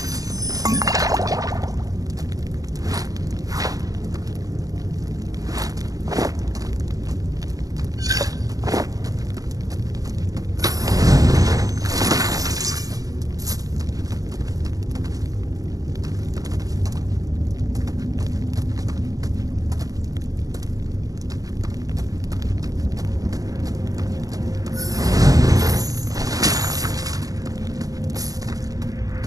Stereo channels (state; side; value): late; left; 0.17 ms